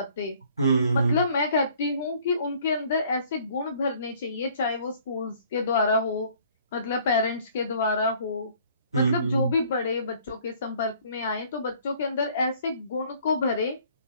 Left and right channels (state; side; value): inverted; both; correlation -0.57